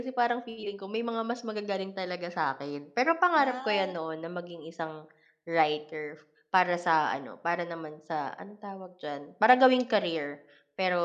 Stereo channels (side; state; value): both; identical; correlation 1.00